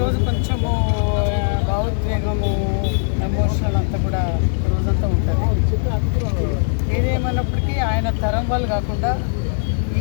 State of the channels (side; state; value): right; silent; digital silence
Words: కొంచెము భావోద్వేగము ఎమోషనల్ అంతా కూడా రోజంతా ఉంటుంది. ఏదేమన్నప్పటికీ ఆయన తరం వాళ్ళు కాకుండా